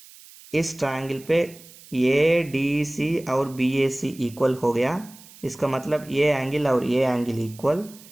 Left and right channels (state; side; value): noise; right; hiss, 21 dB below the sound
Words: इस ट्रायंगल पे ए डी सी और बी ए सी इक्वल हो गया, इसका मतलब ये एंगल और ये एंगल इक्वल,